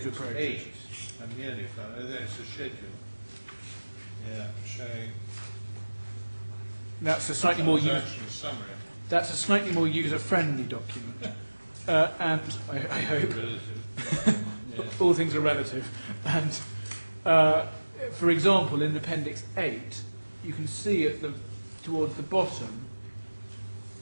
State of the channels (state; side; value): inverted; both; correlation -1.00